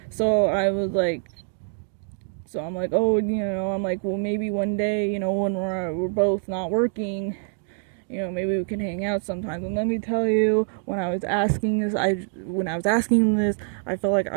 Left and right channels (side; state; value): left; silent; 62 dB below the other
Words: So I'm like, oh, I'm like, well, maybe one day, when we're both not working, maybe we can hang out sometimes. And let me tell you, when I was asking this, I felt like